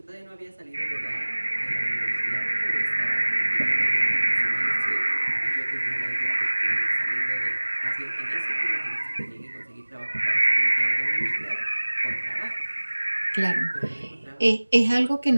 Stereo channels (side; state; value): both; inverted; correlation -1.00